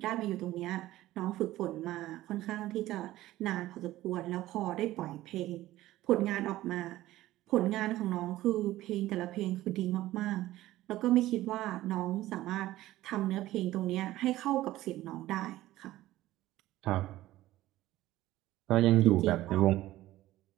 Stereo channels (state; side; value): quieter; left; 15.7 dB